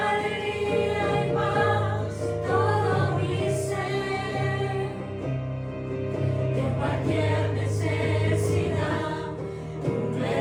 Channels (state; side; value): identical; both; correlation 1.00